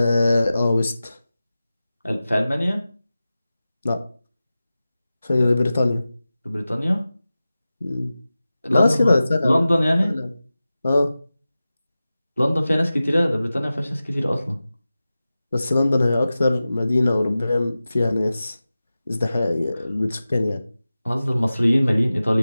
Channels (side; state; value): both; inverted; correlation -0.95